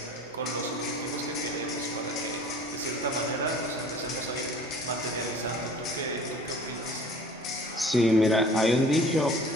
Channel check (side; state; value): both; normal; correlation 0.47